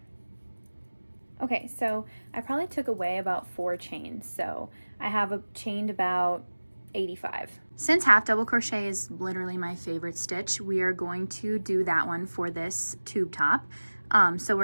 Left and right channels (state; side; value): inverted; both; correlation -1.00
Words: Okay, so I probably took away about 4 chains, so I have chained about 85. Since half double crochet is literally my favorite stitch, we are going to do that one for this tube top. So